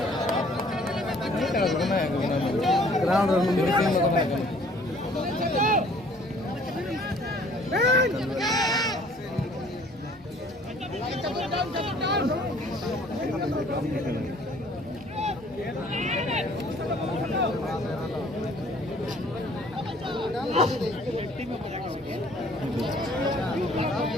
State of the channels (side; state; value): both; normal; correlation 0.56